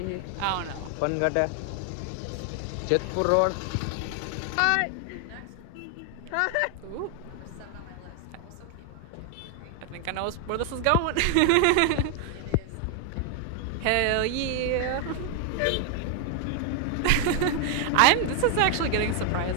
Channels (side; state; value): both; different; correlation 0.00